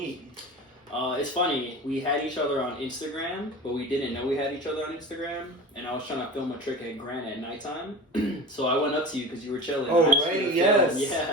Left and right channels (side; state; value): both; normal; correlation 0.33